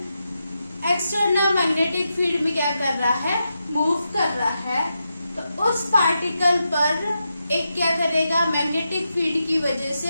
external magnetic field में क्या कर रहा है, मूव कर रहा है, तो उस पार्टिकल पर एक क्या करेगा, मैग्नेटिक फील्ड की वजह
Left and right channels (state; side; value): inverted; both; correlation -0.87